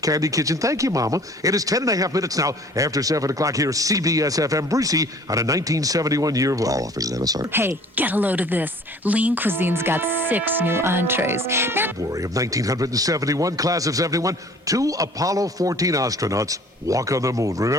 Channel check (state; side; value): normal; both; correlation 0.50